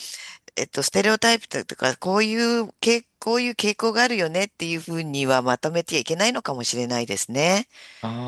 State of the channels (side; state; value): both; identical; correlation 1.00